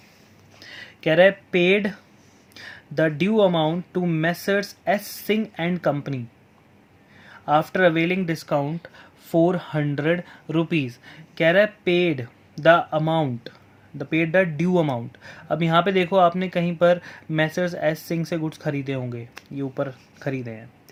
कह रहा है paid the due amount to messrs S Singh and company after availing discount 400 rupees. कह रहा है paid the amount, the paid the due amount. अब यहाँ पे देखो, आपने कहीं पर मेसर्स एस सिंह से गुड्स खरीदे होंगे, ये ऊपर खरीदे हैं,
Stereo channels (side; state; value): both; identical; correlation 1.00